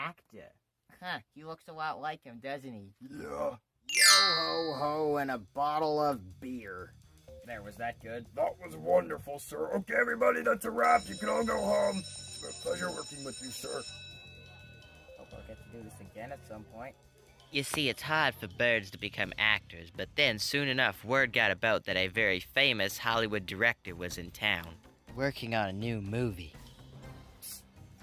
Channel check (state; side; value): identical; both; correlation 1.00